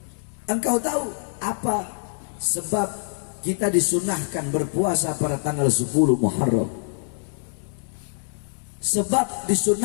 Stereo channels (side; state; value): right; silent; digital silence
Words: Engkau tahu apa sebab kita disunahkan berpuasa pada tanggal 10 Muharram? Sebab